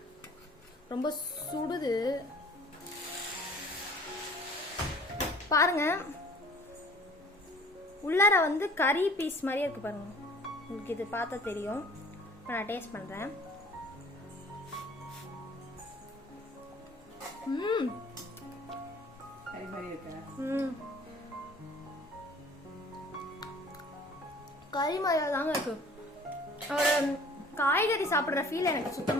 ரொம்ப சுடுது பாருங்க. உள்ளார வந்து கறி பீஸ் மாதிரியே இருக்கு பாருங்க. உங்களுக்கு இது பார்த்தா தெரியும். இப்போ நான் டேஸ்ட் பண்ணுறேன். கறி மாதிரியா தாங்க இருக்கு. ஒரு காய்கறி சாப்பிட்ற ஃபீல் எனக்கு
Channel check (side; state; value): both; normal; correlation 0.50